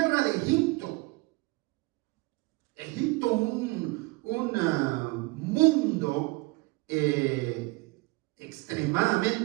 de Egipto. Egipto, un mundo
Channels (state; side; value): quieter; left; 23.3 dB